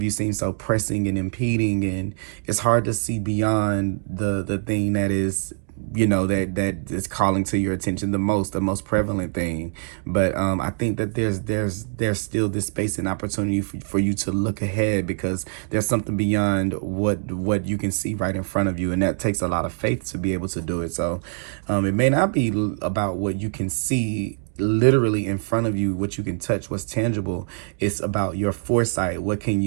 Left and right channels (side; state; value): left; silent; digital silence